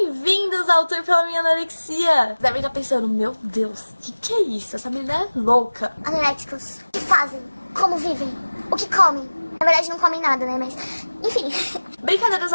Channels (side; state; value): both; inverted; correlation -1.00